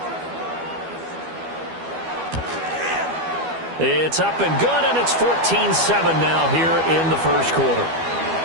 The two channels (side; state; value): left; late; 12 ms